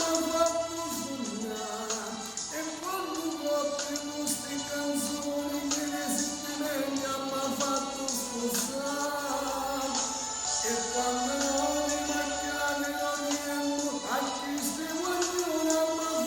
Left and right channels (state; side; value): identical; both; correlation 1.00